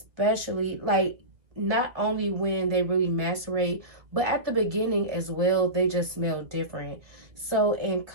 like, not only when they really macerate, but at the beginning as well, they just smell different. So in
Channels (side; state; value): left; late; 1.7 ms